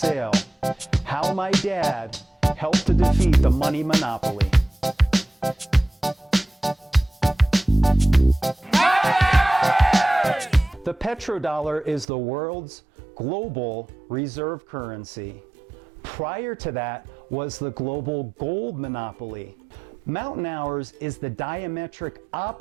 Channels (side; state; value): left; drops out; at 12.1 s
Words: How My Dad Helped to Defeat the Money Monopoly. The petrodollar is the world's global reserve currency. Prior to that was the global gold monopoly. Mountain Hours is the diametric